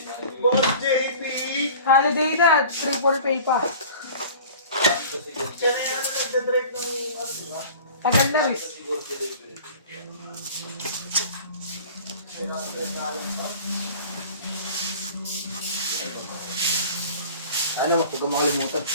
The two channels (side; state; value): both; inverted; correlation -0.43